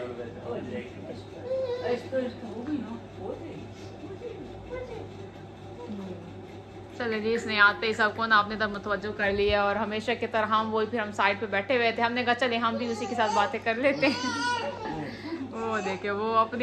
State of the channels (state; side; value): identical; both; correlation 1.00